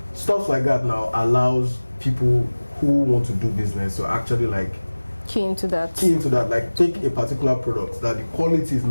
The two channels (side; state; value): both; inverted; correlation -1.00